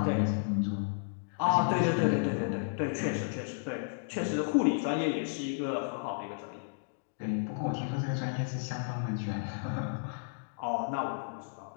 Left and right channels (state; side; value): silent; right; digital silence